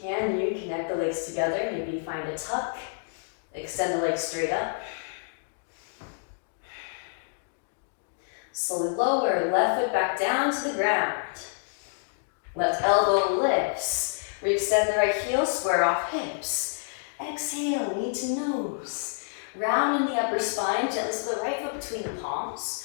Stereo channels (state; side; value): silent; right; digital silence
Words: Can you connect the legs together? Maybe find a tuck. Extend the legs straight up. Slowly lower, left foot back down to the ground. Left elbow lifts. Re-extend the right heel, square off hips. Exhale, knee to nose. Round in the upper spine, gently slip the right foot between the palms.